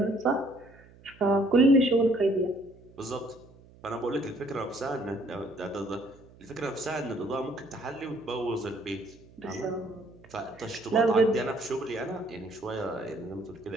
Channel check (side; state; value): right; noise; hum, 24 dB below the sound